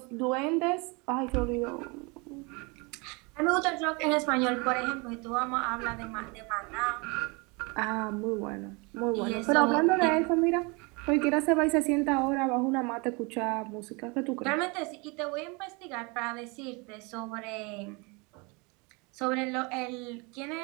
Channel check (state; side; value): quieter; left; 29.1 dB